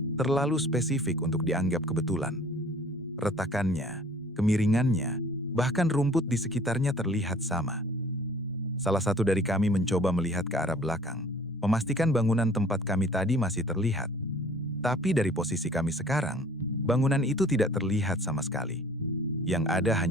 terlalu spesifik untuk dianggap kebetulan. Retakannya, kemiringannya, bahkan rumput di sekitarnya terlihat sama. Salah satu dari kami mencoba melihat ke arah belakang, memastikan bangunan tempat kami tadi masih terlihat. Tapi dari posisi kami sekarang, bangunan itu tidak terlihat sama sekali. Yang ada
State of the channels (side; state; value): both; normal; correlation 0.51